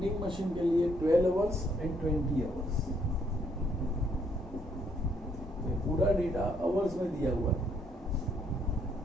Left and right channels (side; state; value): both; normal; correlation 0.70